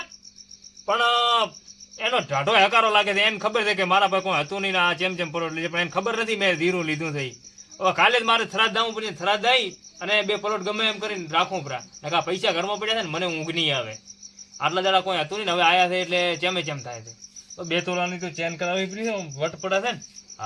પણ એનો ઢાઢો હકારો લાગે છે એને ખબર છે કે મારા પાસે કોઈ હતું નહીં આ ચેમ પલોટ લીધે પણ એને ખબર નથી મેં ધીરું લીધું થઈ હવે કાલે જ મારે થરાદ દાવું પડે થરાદ દઈ અને 2 પ્લોટ ગમે એમ કરીને રાખવું પરા નકા પૈસા ઘરમાં પડ્યા છે ને મને ઊંઘ નહીં આવે આટલા દાડા કોઈ હતું નહીં હવે આયા છે એટલે ચેમ થાય છે તો 2 તોલાની તો ચેન કરાવવી પડી છે વટ પડે છે ને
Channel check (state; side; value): identical; both; correlation 1.00